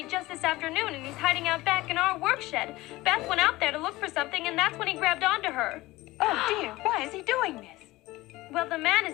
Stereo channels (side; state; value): right; quieter; 19.1 dB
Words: just this afternoon, and he's hiding out back in our work shed. Beth went out there to look for something, and that's when he grabbed onto her. Oh, dear. Why is he doing this? Well, the man